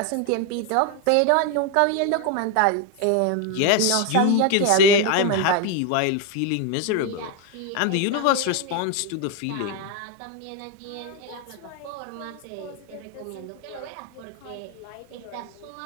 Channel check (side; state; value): both; different; correlation 0.01